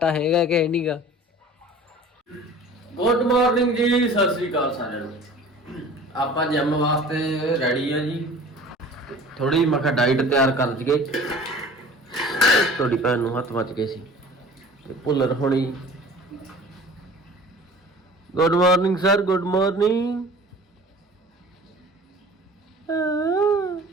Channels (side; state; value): both; normal; correlation 0.44